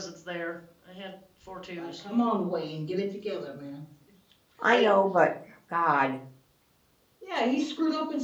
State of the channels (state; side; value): identical; both; correlation 1.00